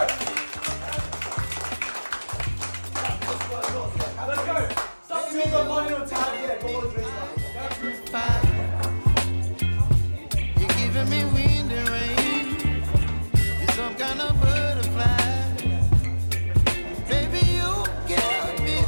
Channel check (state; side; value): inverted; both; correlation -1.00